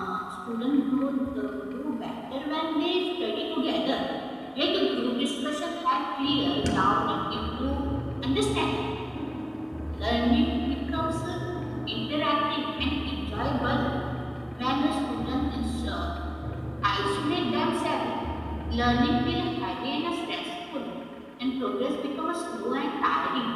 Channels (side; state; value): both; identical; correlation 1.00